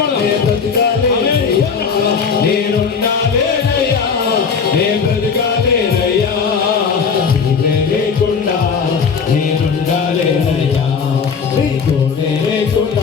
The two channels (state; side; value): quieter; right; 5.9 dB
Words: నే బ్రతకాలేనయ్యా, నేనుండాలేనయ్యా, నే బ్రతకాలేనయ్యా. నీవే లేకుండా నేనుండాలేనయ్యా, నీ తోడే